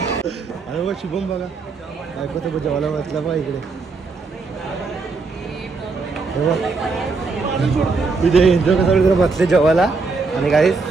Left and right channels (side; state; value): left; quieter; 4.2 dB